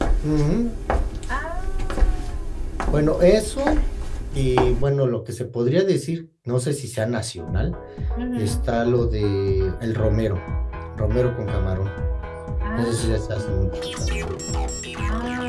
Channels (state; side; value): identical; both; correlation 1.00